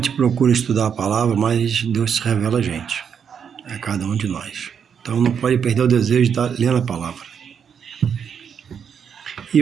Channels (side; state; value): left; quieter; 7.4 dB